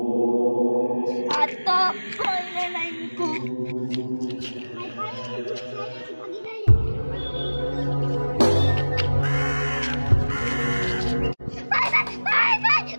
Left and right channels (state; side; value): inverted; both; correlation -1.00